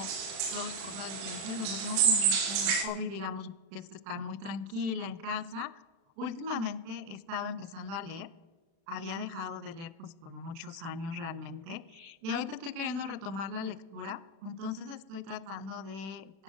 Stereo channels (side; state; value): left; late; 36 ms